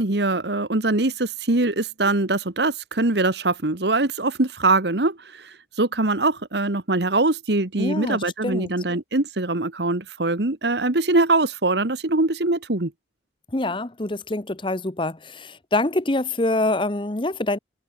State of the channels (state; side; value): normal; both; correlation 0.16